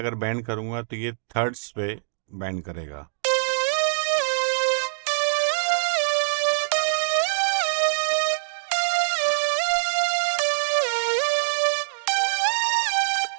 बैंड करूंगा तो ये थर्ड्स पे बैंड करेगा।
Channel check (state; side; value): silent; left; digital silence